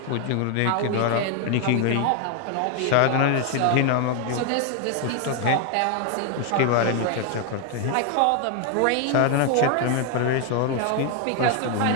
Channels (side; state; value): both; different; correlation 0.00